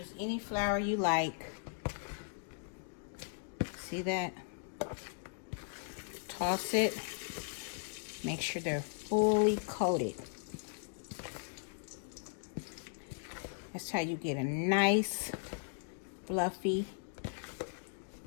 any flour you like. See that? Toss it. Make sure they're fully coated. That's how you get a nice, fluffy,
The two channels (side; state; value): right; silent; digital silence